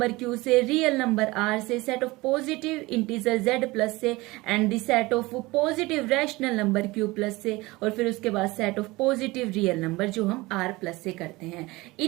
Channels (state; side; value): quieter; left; 21.5 dB